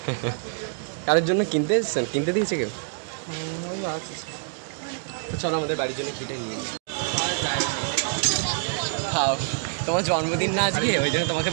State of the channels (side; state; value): left; silent; digital silence